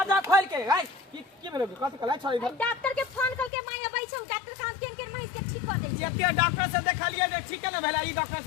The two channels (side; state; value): right; drops out; at 3.5 s